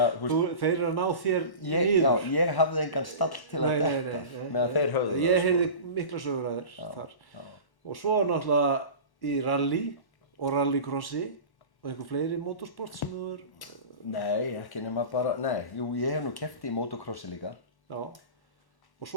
þeir eru að ná þér niður. Já, ég hafði engan stall til að detta meðan þeir höfðu það. Ég heyrði mikla sögur að þér þar. Já. Og svo náttúrulega í rally og rallycrossi og einhver fleiri motorsport sem þú er... Nei, ekki nema bara... Jú, ég hef nú keppt í motocrossi líka. Já. Og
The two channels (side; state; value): right; late; 1.1 ms